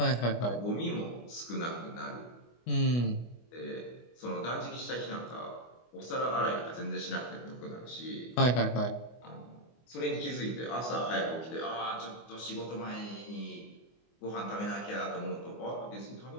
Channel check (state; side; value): late; right; 25 ms